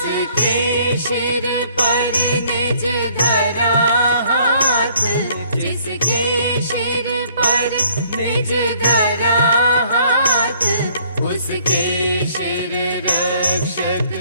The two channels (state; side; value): inverted; both; correlation -0.61